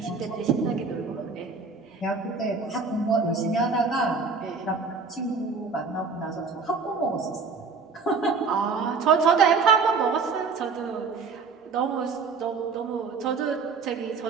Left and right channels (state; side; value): quieter; left; 4.7 dB